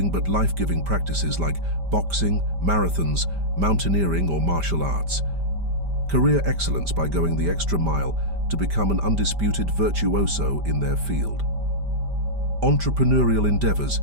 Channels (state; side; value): late; left; 5.1 ms